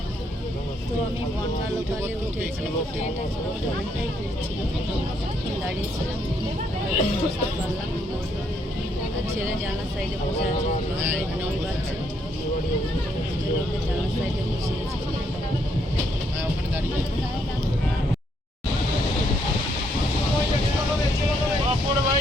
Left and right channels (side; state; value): both; normal; correlation 0.73